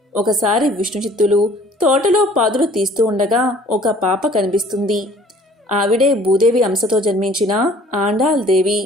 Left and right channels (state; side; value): normal; both; correlation 0.53